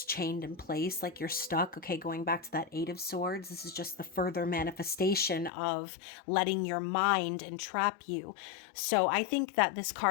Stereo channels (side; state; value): right; drops out; at 5.5 s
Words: chained in place, like you're stuck, okay? Going back to that Eight of Swords, this is just the further manifestation of letting your mind entrap you. So I think that this